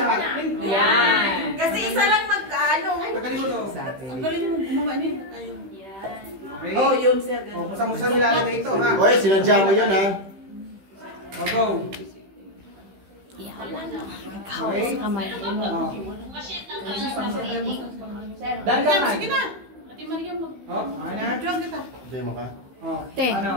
Yan. Kasi isa lang magkano. Tanggalin mo to. Ang galing mo gumawa niyo. Okay? Oh, yun sir. O, kung saan mo nilalagay ito ha. Oy, sinadya mo yun ha. O, go. Kaos sa kamay. Dandan. Sige na. Ate Maria, mag... O, okay na? Diyan kita. Demo ka. O, Te. ano?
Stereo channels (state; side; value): late; left; 15 ms